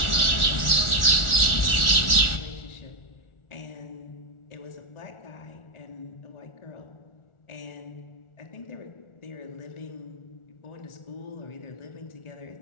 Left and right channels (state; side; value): late; right; 1.4 ms